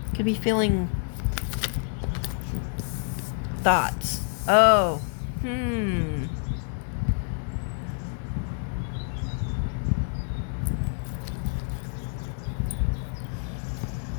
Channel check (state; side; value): silent; right; digital silence